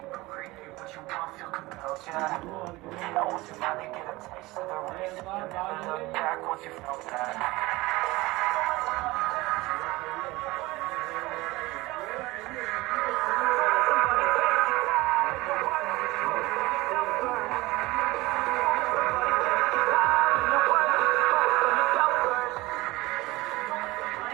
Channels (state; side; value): quieter; left; 20.5 dB